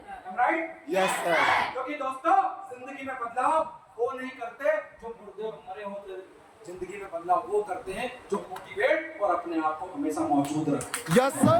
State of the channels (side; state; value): both; identical; correlation 1.00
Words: Right? Yes sir. क्योंकि दोस्तों जिंदगी में बदलाव वो नहीं करते जो मुर्दे और मरे होते, जिंदगी में बदलाव वो करते हैं जो मोटिवेट और अपने आप को हमेशा मौजूद रखते। Yes